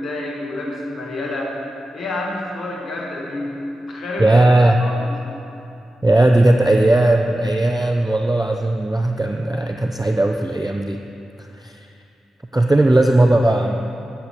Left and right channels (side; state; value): both; normal; correlation 0.94